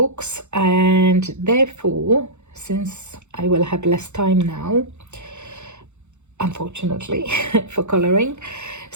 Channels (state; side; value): late; left; 0.83 ms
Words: And therefore, since I will have less time now, unfortunately, for coloring,